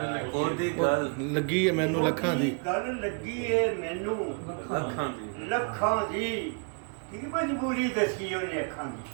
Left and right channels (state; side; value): quieter; left; 36.6 dB